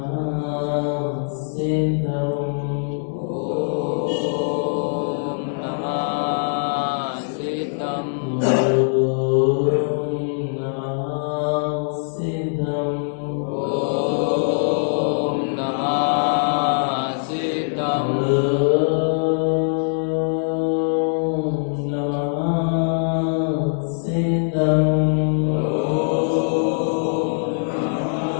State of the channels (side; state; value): right; silent; digital silence